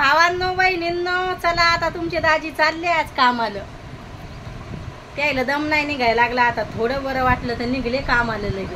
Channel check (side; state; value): both; identical; correlation 1.00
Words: बहिणींनो, चला आता तुमचे दाजी चालले आज कामाला. त्याला दम नाही निघायला लागला. आता थोडं बरं वाटलं तर निघले कामाला